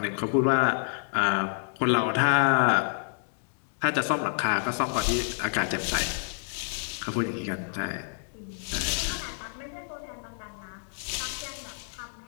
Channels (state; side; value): silent; right; digital silence